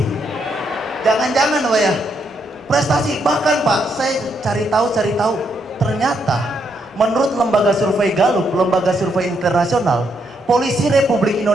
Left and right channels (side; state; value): both; normal; correlation 0.76